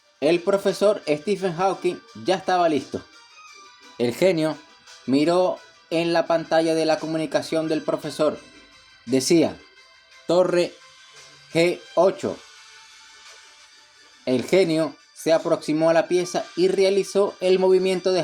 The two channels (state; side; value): identical; both; correlation 1.00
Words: El profesor Stephen Hawking ya estaba listo. El genio miró en la pantalla de la comunicación del profesor. Decía: Torre G8. El genio se aproximó a la pieza y realizó el movimiento de